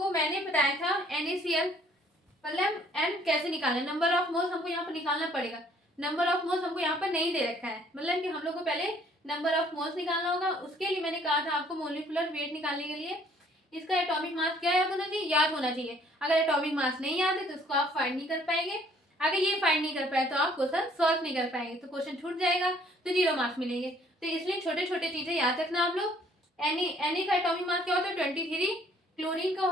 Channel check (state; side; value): normal; both; correlation 0.60